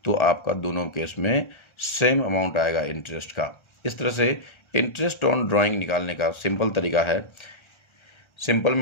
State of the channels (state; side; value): late; right; 1.3 ms